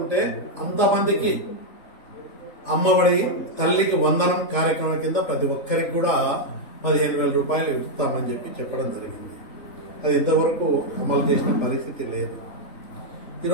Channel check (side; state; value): right; late; 3.4 ms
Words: అంతమందికి అమ్మఒడి తల్లికి వందనం కార్యక్రమం కింద ప్రతి ఒక్కరికి కూడా 15,000 రూపాయలు ఇస్తామని చెప్పి చెప్పడం జరిగింది. అది ఇంతవరకు అమలు చేసిన పరిస్థితి లేదు.